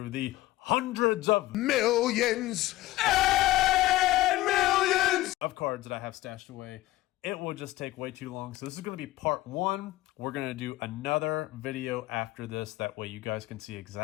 the hundreds of millions and millions of cards that I have stashed away. It will just take way too long. So this is going to be part 1. We're going to do another video after this. That way you guys can see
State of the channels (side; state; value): right; quieter; 17.3 dB